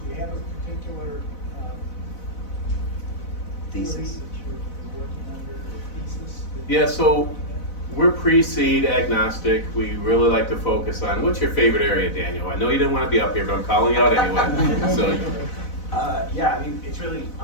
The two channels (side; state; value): right; late; 4.0 ms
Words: Do you have a particular theory Thesis. that you're working under, or thesis? Yeah, so we're pre-seed agnostic. We really like to focus on, what's your favorite area, Daniel? I know you didn't want to be up here, but I'm calling you out anyway. So, Yeah, I mean, it's really